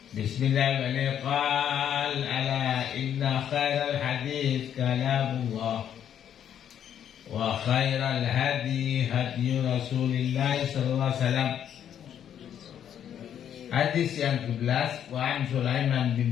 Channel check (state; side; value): quieter; right; 9.5 dB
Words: Bismillahirrahmanirrahim. Qala ala inna khairal hadits kalamullah wa khairal hadi hadi Rasulillah sallallahu alaihi wasallam. Hadis yang ke-11, wa an Sulaiman